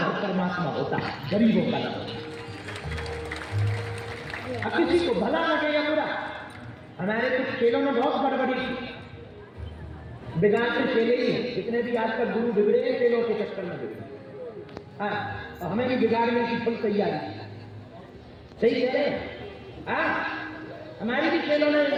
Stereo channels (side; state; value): both; identical; correlation 1.00